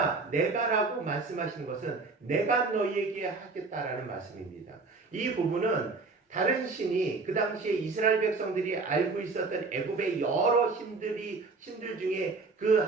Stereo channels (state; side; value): quieter; left; 4.0 dB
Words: 내가라고 말씀하시는 것은 내가 너희에게 하겠다라는 말씀입니다. 이 부분은 다른 신이 그 당시에 이스라엘 백성들이 알고 있었던 애굽의 여러 신들 중에 그